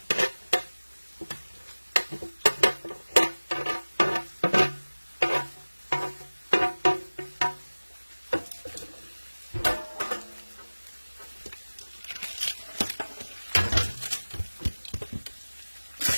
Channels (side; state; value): both; inverted; correlation -1.00